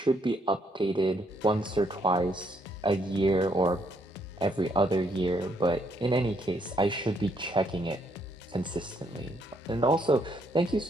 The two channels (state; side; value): normal; both; correlation 0.72